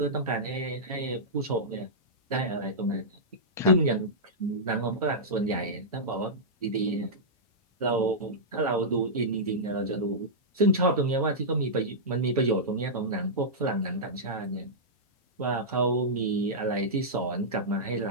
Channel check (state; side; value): normal; both; correlation -0.12